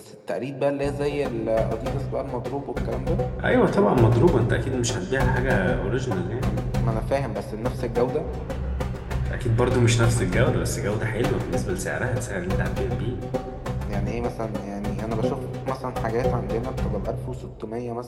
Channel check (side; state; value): both; identical; correlation 1.00